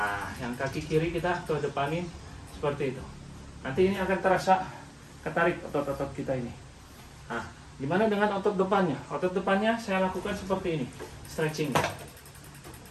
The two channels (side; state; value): both; identical; correlation 1.00